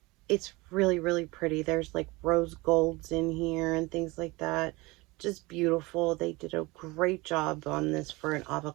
It's really, really pretty. There's like rose golds in here and things like that. Just beautiful. They did a great job on this for an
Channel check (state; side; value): quieter; left; 23.1 dB